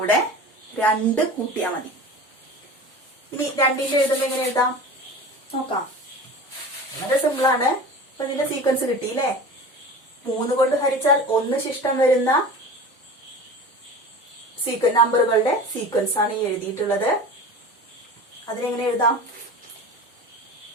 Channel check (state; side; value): normal; both; correlation 0.35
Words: 2 കൂട്ടിയാൽ മതി. ഇനി 2ന്റെ എഴുതുമ്പോ എങ്ങനെ എഴുതാം നോക്കാം. വളരെ സിമ്പിൾ ആണ്. അപ്പൊ ഇതിന്റെ സീക്വൻസ് കിട്ടിയില്ലേ. 3 കൊണ്ട് ഹരിച്ചാൽ 1 ശിഷ്ടം വരുന്ന നമ്പറുകളുടെ സീക്വൻസ് ആണ് ഈ എഴുതിയിട്ടുള്ളത്. അതിനെങ്ങനെ എഴുതാം?